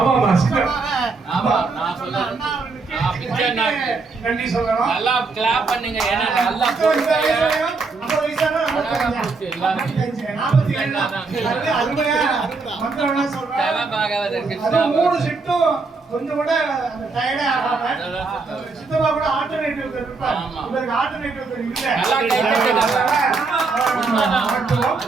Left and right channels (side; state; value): left; quieter; 4.2 dB